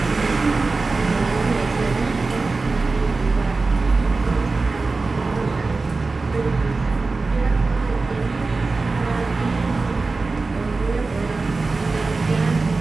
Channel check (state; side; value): quieter; left; 3.8 dB